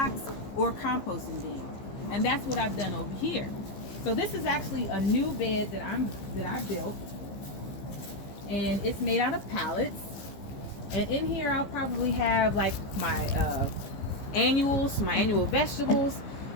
or a composting bin. And that's what I've done over here. So this is actually a new bed that I built, and it's made out of pallets. And in here I'll probably have like my annual vegetables,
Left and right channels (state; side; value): late; right; 15 ms